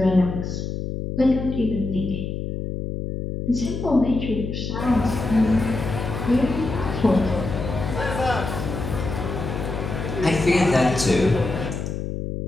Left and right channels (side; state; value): left; noise; hum, 4 dB below the sound